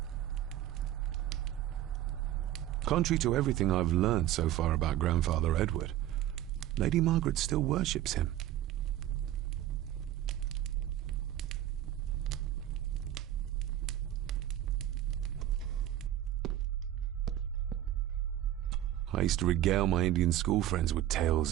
Contrary to everything I've learned so far about Grandfather Edward, Lady Margaret still worships him. I used to regale my Indian school friends with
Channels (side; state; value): left; quieter; 12.8 dB